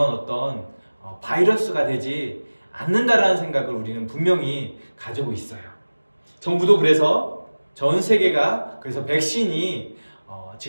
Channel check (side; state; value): both; inverted; correlation -1.00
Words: 어떤 바이러스가 되지 않는다라는 생각을 우리는 분명히 가지고 있어요. 정부도 그래서 전 세계가 그래서 백신이